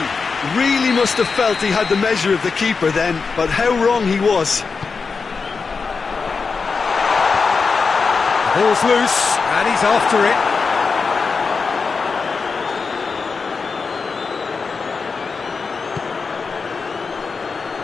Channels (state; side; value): quieter; right; 4.9 dB